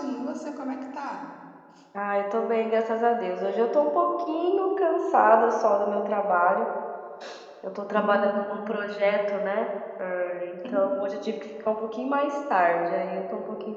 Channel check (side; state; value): both; identical; correlation 1.00